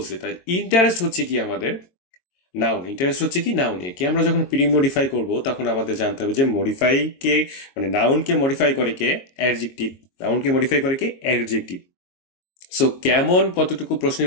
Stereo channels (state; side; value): late; right; 22 ms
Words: তাই ইন্টারেস্ট হচ্ছে কি আমাদের নাউন। ইন্টারেস্ট হচ্ছে কি নাউন। একে আমরা যখন প্রি মডিফাই করব তখন আমাদের জানতে হবে যে মডিফাই কে, মানে নাউনকে মডিফাই করে কে, অ্যাডজেক্টিভ। নাউনকে মডিফাই করে কে, অ্যাডজেক্টিভ। সো কেমন কতটুকু